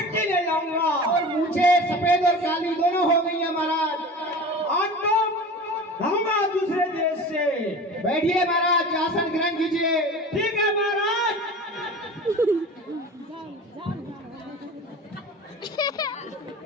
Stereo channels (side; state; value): both; normal; correlation 0.35